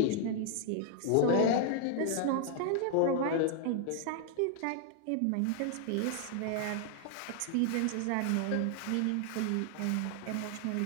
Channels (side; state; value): both; different; correlation 0.00